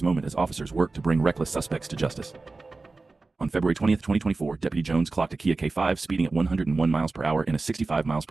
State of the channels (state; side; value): quieter; left; 3.6 dB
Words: moment as officers work to bring reckless suspects to justice. On February 20th, 2024, Deputy Jones clocked a Kia K5 speeding at 101 miles per hour in a 65 miles